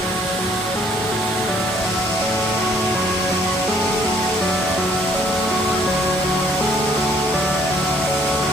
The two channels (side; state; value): both; normal; correlation 0.63